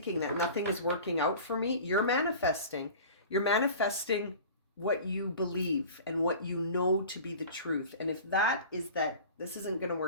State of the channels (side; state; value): both; inverted; correlation -0.40